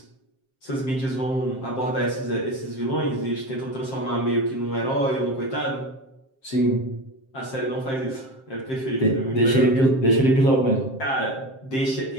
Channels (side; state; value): right; late; 7.6 ms